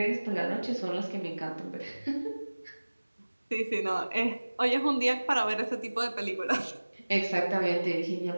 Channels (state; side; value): inverted; both; correlation -1.00